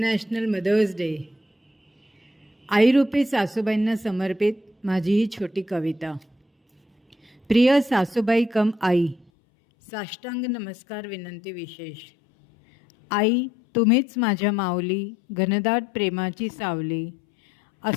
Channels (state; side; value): drops out; right; at 9.2 s